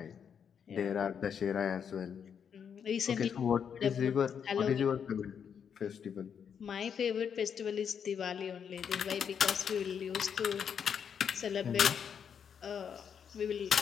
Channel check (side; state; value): right; quieter; 7.5 dB